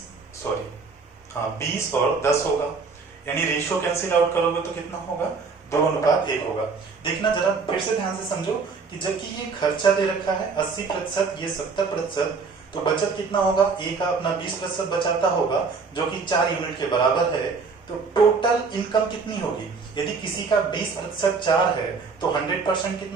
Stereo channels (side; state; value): left; quieter; 4.8 dB